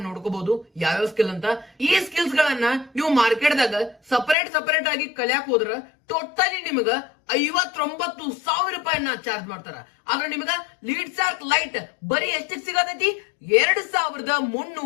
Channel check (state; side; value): drops out; right; at 4.4 s